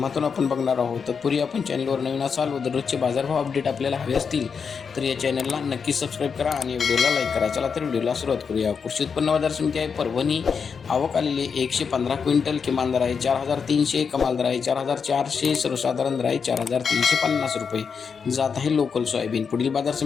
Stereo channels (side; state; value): right; quieter; 6.1 dB